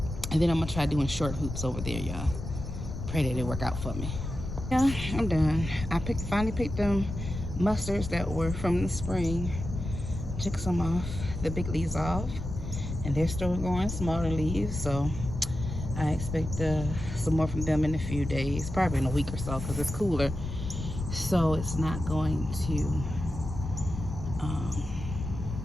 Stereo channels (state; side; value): noise; left; rumble, 7 dB below the sound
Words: then I'm gonna try doing short hoops over there, y'all. Pray that it work out for me. Yeah, I'm done. I finally picked them mustards that were from the spring. Took some off, the big leaves off, and they're still going, smaller leaves. So I expect some more from them in a few days, probably in a week or so, because it's cooler. So it's not going to